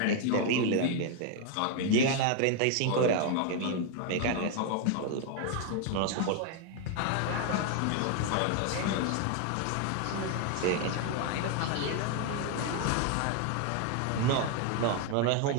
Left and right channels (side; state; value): both; different; correlation 0.01